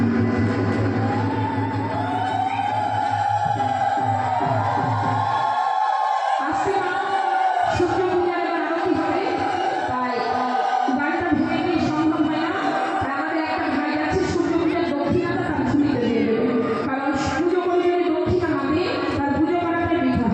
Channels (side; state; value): both; identical; correlation 1.00